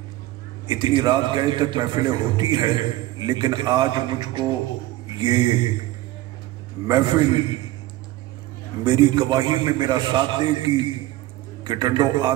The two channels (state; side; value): quieter; left; 16.7 dB